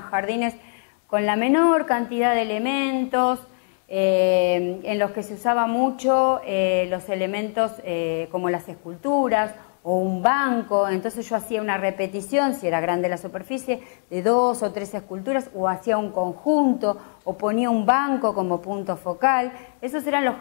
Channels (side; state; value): right; silent; 63 dB below the other